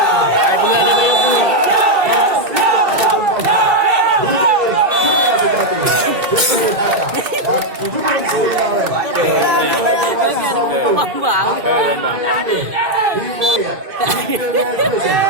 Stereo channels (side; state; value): left; late; 2.2 ms